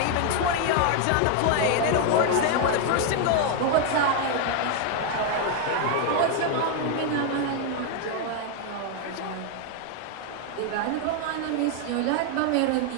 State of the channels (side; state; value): both; different; correlation 0.00